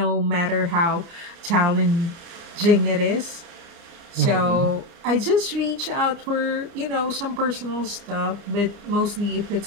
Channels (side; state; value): left; late; 30 ms